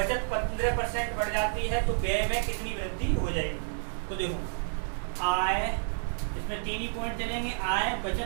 15% बढ़ जाती है, तो व्यय में कितनी वृद्धि हो जाएगी। तो देखो आय, इसमें 3 ही पॉइंट चलेंगे, आय,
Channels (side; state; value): left; silent; digital silence